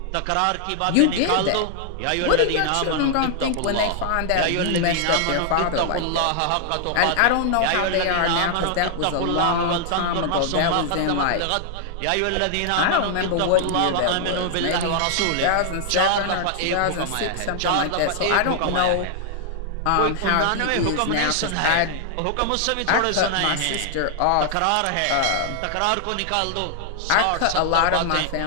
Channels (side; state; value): both; different; correlation 0.00